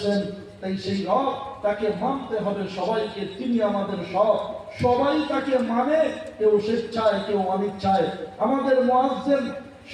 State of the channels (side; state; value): both; identical; correlation 1.00